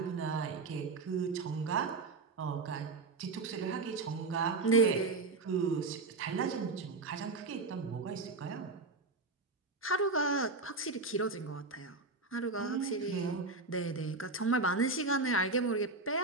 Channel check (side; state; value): left; quieter; 3.7 dB